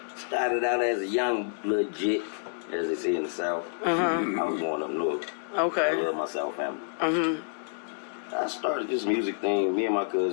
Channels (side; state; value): right; silent; digital silence